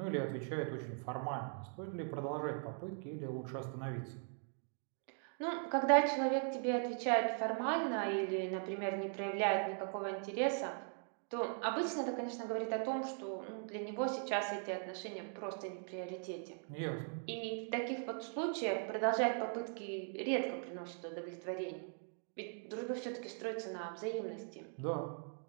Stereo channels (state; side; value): silent; left; 51 dB below the other